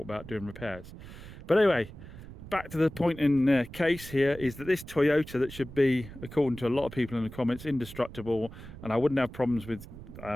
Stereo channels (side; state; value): right; noise; rumble, 15 dB below the sound